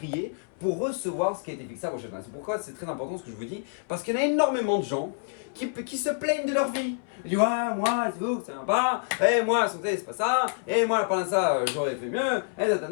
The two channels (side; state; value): right; silent; 59 dB below the other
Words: pour recevoir ce qui a été fixé à Rosh Hashanah. C'est pourquoi c'est très important ce que je vous dis, parce qu'il y en a énormément de gens qui se plaignent de leur vie. Ils disent, ouais, moi, c'est vous, ça vient pas. Et moi, la santé, c'est pas ça. Et moi, pendant ça, j'aurais fait mieux. Et